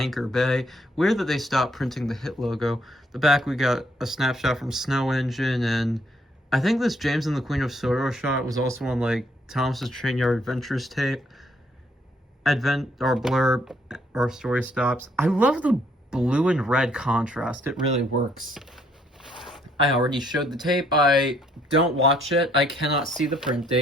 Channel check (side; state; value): both; normal; correlation 0.68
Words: Bay. Weird that they stopped printing the Hit logo. The back, we got a snapshot from Snow Engine, and I think this James and the Queen of Sorrow shot was also on, like, Thomas's Train Yard Adventures tape. Blurb, or story stops. I love the blue and red contrast. It really works. I already showed the tape. I don't watch it. I cannot see the print